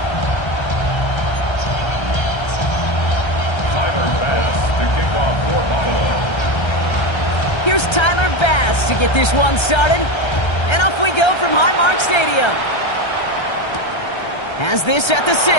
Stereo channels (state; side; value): late; right; 1.3 ms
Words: Here's Tyler Bass to get this one started. And off we go from Highmark Stadium. Has this at the 6. And